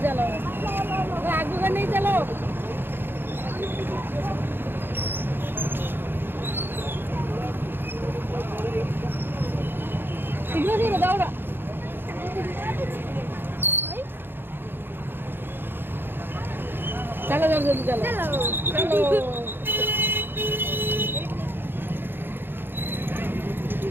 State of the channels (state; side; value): late; left; 0.10 ms